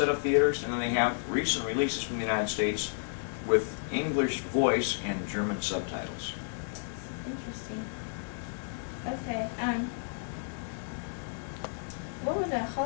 of theaters, and then they have recent releases from the United States with English voice and German subtitles. Interesting. Okay. What were the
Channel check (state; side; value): silent; right; digital silence